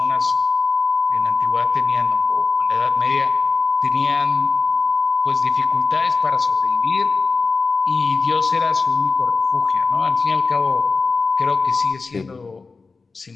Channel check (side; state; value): right; quieter; 4.2 dB